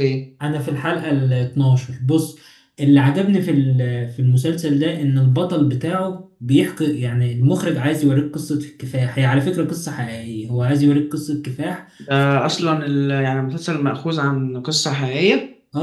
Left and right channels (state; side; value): identical; both; correlation 1.00